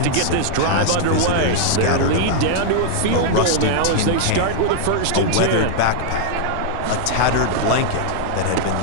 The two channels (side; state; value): both; different; correlation -0.01